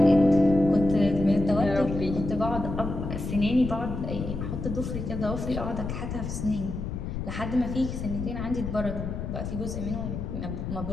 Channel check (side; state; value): left; noise; rumble, 5 dB below the sound